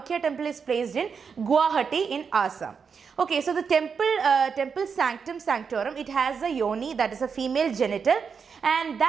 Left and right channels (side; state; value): left; quieter; 6.0 dB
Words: temple is placed in Guwahati in Assam. Okay, so the temple sanctum sanctorum, it has a yoni, that is a female genital, and